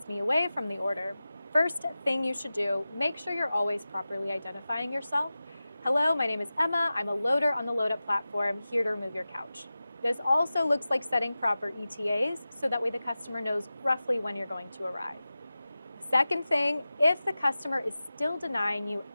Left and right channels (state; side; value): inverted; both; correlation -0.95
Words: me away from the order? First thing you should do, make sure you're always properly identifying yourself. Hello, my name is Emma. I'm a loader on the LoadUp platform, here to remove your couch. This also looks like setting proper ETAs, so that way the customer knows roughly when you're going to arrive. Second thing, if the customer is still denying you